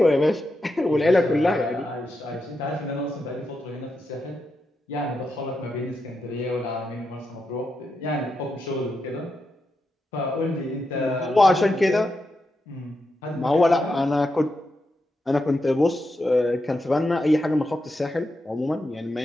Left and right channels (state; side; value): normal; both; correlation 0.86